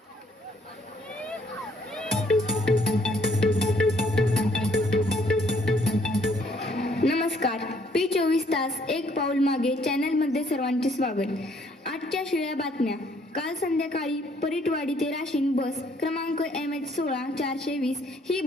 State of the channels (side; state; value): both; normal; correlation 0.65